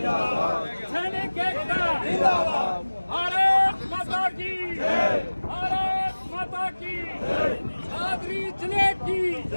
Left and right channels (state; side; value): inverted; both; correlation -1.00